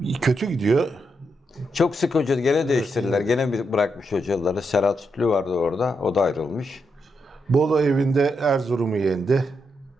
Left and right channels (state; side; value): normal; both; correlation 0.82